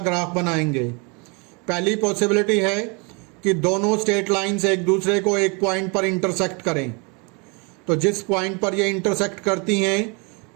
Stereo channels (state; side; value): quieter; left; 31.7 dB